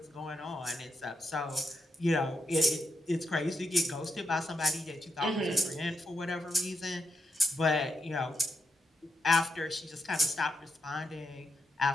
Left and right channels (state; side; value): normal; both; correlation 0.83